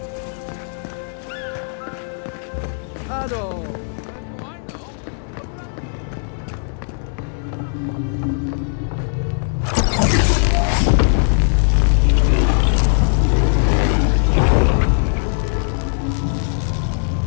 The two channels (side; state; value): right; silent; 66 dB below the other